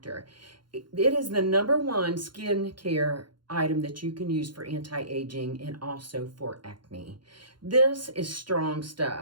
It is the #1 skincare item that you can use for anti-aging and also for acne. This is strong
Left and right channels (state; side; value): late; left; 0.72 ms